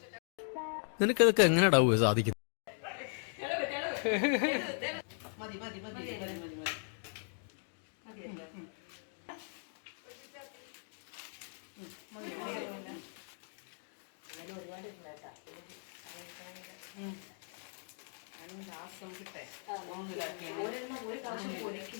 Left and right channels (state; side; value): silent; right; 52 dB below the other